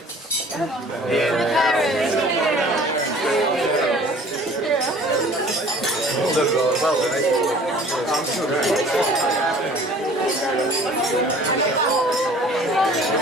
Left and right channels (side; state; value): both; normal; correlation 0.49